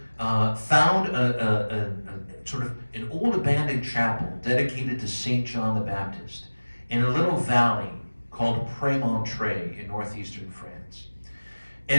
found a sort of an old abandoned chapel dedicated to St. John the Baptist in a little valley called Prémontré in northeastern France.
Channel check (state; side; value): inverted; both; correlation -1.00